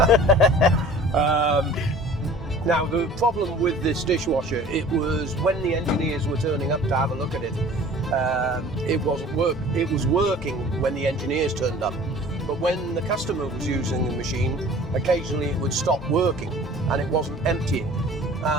Now the problem with this dishwasher, it was when the engineers were turning up to have a look at it, it was working when the engineers turned up. But when the customer was using the machine, occasionally it would stop working and it wasn't emptying.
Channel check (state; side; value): normal; both; correlation 0.46